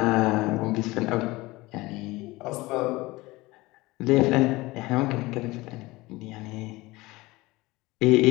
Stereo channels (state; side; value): quieter; right; 20.8 dB